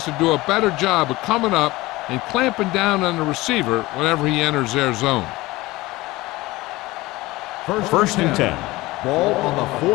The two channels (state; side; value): quieter; right; 19.8 dB